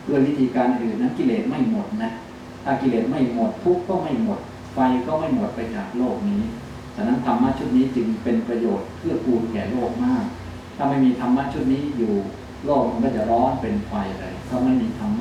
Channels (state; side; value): identical; both; correlation 1.00